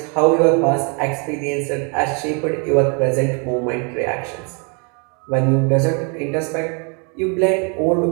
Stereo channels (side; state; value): left; quieter; 35.7 dB